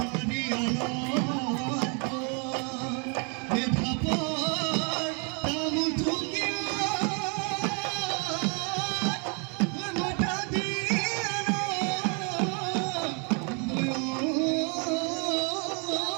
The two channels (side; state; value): left; quieter; 36.4 dB